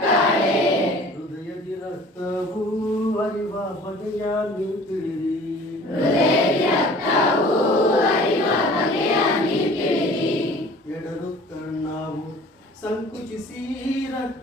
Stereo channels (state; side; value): normal; both; correlation 0.47